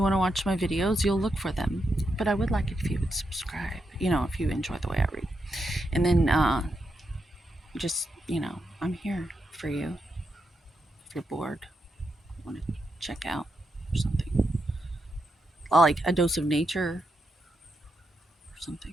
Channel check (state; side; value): normal; both; correlation 0.84